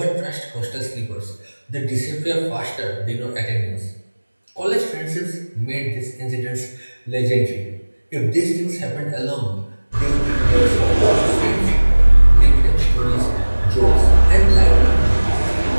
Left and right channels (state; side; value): inverted; both; correlation -1.00